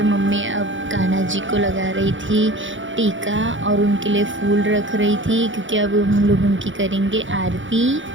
मम्मी अब कान्हा जी को लगा रही थी टीका और उनके लिए फूल रख रही थी, क्योंकि अब हम लोग उनकी करेंगे आरती।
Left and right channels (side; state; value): left; late; 0.56 ms